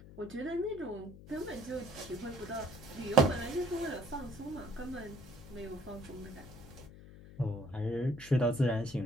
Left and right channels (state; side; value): noise; left; hum, 16 dB below the sound